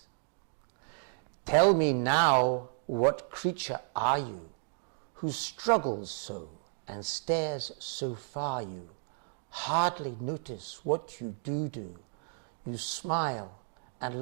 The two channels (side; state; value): left; silent; digital silence